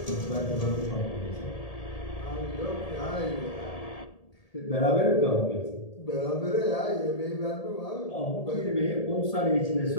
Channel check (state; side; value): late; right; 1.8 ms